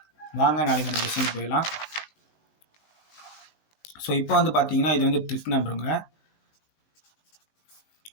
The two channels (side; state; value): right; late; 19 ms